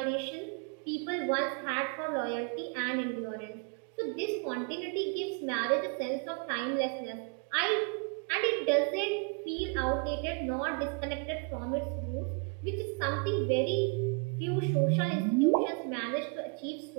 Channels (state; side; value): quieter; left; 35.2 dB